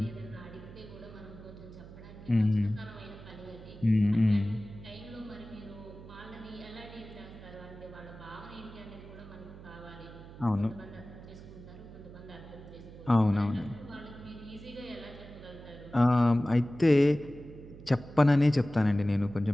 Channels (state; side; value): noise; right; hum, 16 dB below the sound